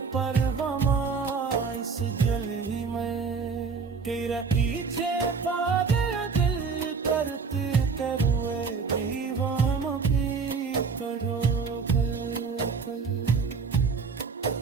परवमा इस गली में तेरा पीछे पागल दिल करते करुए दीवानों की करो कल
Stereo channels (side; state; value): left; quieter; 5.2 dB